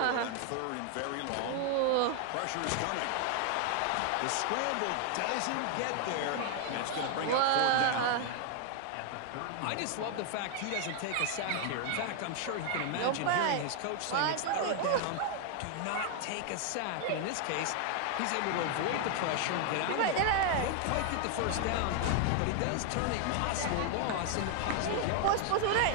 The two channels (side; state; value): both; different; correlation 0.00